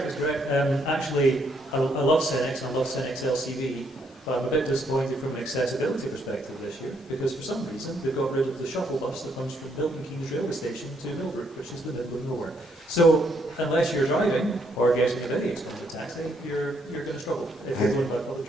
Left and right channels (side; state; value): both; normal; correlation 0.72